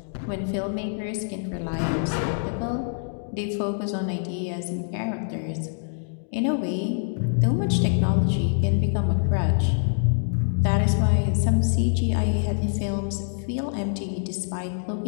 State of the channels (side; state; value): right; silent; digital silence